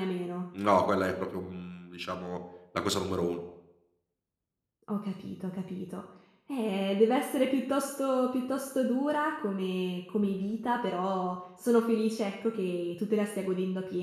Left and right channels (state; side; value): identical; both; correlation 1.00